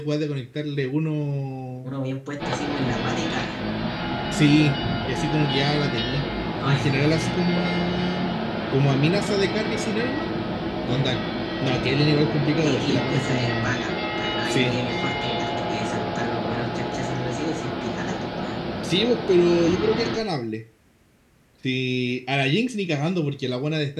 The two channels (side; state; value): both; identical; correlation 1.00